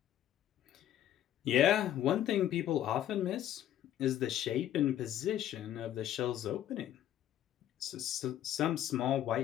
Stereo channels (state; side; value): quieter; right; 11.7 dB